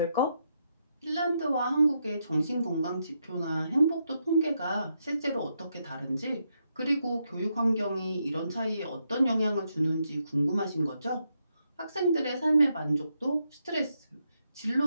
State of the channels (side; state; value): both; inverted; correlation -0.81